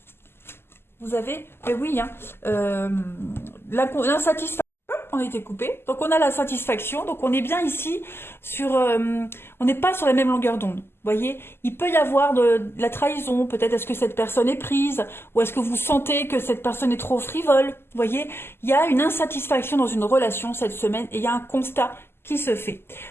Vous avez, mais oui, hein, l'insatisfaction, on a été coupé. Donc on a la satisfaction, donc on est bien ici sur, on n'est pas sur la même longueur d'onde. Vous voyez, il peut y avoir de la trahison, peut-être est-ce que cette personne est prise, ou est-ce que vous sentez que cette personne est trop frivole. Vous voyez, il y a une insatisfaction dans une relation cette semaine et il y a un constat qui se fait.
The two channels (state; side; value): late; right; 0.12 ms